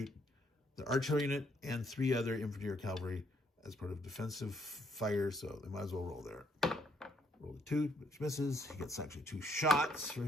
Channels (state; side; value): normal; both; correlation 0.70